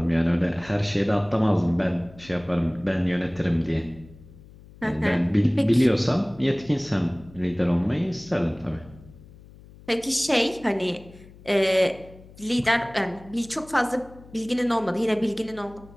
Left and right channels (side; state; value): left; noise; hum, 21 dB below the sound